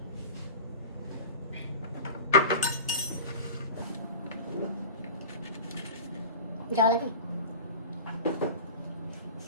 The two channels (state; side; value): inverted; both; correlation -0.34